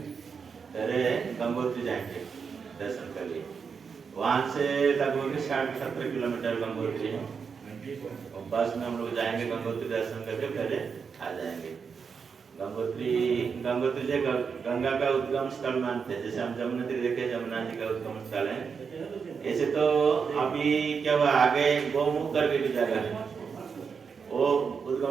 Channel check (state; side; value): quieter; left; 5.9 dB